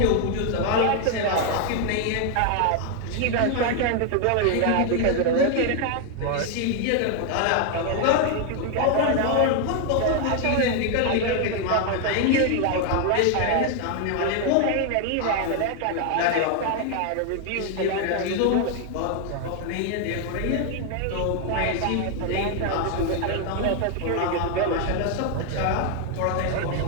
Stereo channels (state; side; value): different; both; correlation 0.00